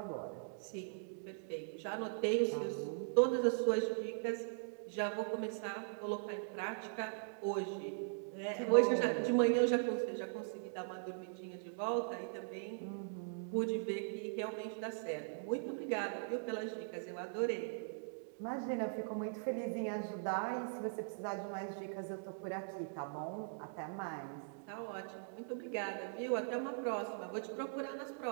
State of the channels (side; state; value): left; silent; digital silence